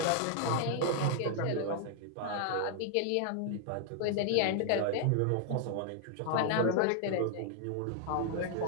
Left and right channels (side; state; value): both; different; correlation 0.00